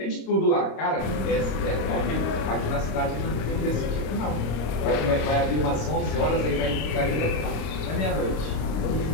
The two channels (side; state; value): right; late; 26 ms